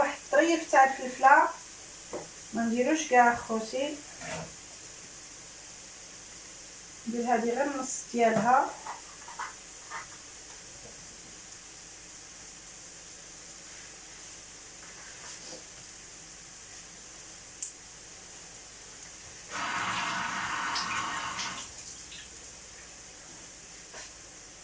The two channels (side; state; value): both; identical; correlation 1.00